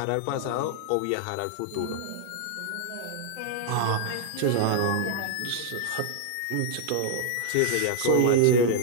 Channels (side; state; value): both; different; correlation 0.00